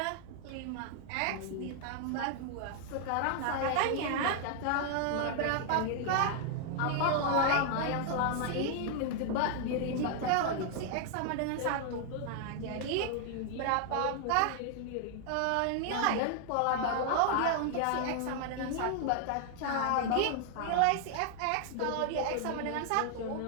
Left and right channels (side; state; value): both; different; correlation 0.00